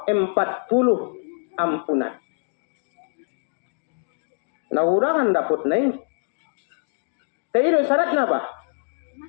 40 ampunan. Naurangan dapat naik. Tapi syaratnya apa?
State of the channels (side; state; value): right; silent; digital silence